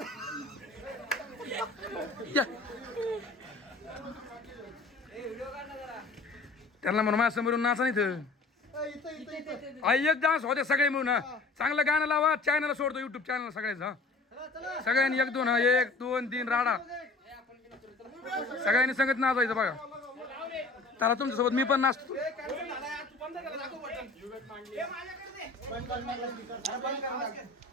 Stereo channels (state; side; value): quieter; right; 3.6 dB